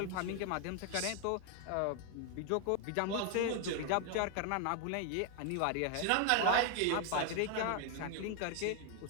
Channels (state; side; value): different; both; correlation 0.01